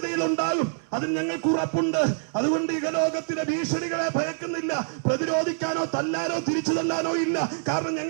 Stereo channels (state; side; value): silent; left; 61 dB below the other